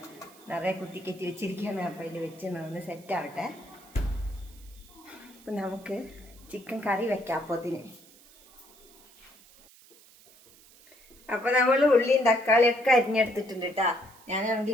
നിറയെ കുത്തിക്കറ്റി വെച്ചിരിക്കുകയാണ്. അപ്പോൾ അതിൽ വെച്ച് ഒന്ന് സെറ്റാവട്ടെ. അപ്പം നമുക്ക് ചിക്കൻ കറി വെക്കാം അപ്പോഴത്തിന്. അപ്പോൾ നമ്മൾ ഉള്ളിയും തക്കാളിയൊക്കെ അരിഞ്ഞെടുത്തിട്ടുണ്ട് കേട്ടോ.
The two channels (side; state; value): right; noise; hiss, 25 dB below the sound